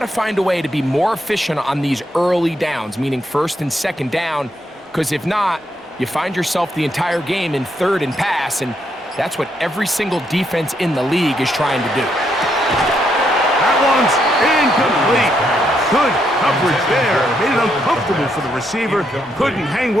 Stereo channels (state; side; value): normal; both; correlation 0.77